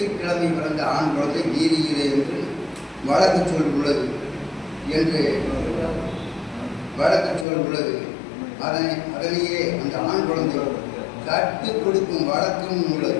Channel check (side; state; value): right; drops out; at 7.5 s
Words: பிறந்த ஆண் குழந்தை வீதியிலே என்று வழக்கு சொல் உள்ளது. அதனையே அந்த ஆண் குழந்தை கட்டு கொடுக்கும் வழக்கம்